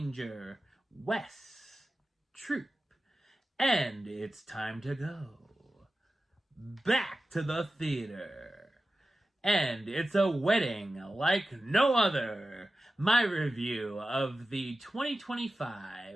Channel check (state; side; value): normal; both; correlation 0.94